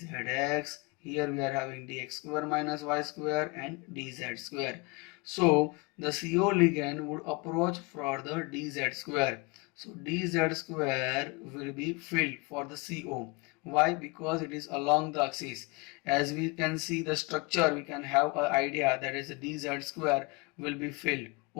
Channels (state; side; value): quieter; right; 27.9 dB